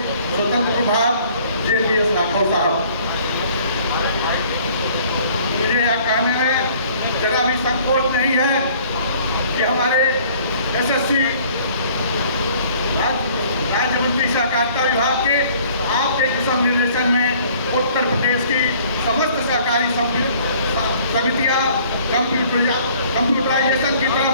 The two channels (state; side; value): inverted; both; correlation -0.55